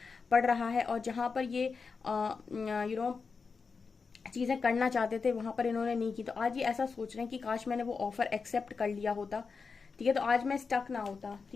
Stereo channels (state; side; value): quieter; right; 5.0 dB